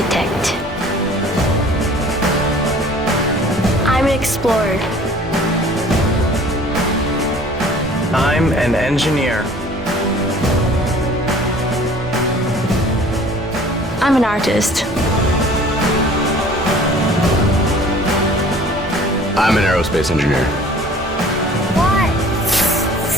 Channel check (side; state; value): both; normal; correlation 0.50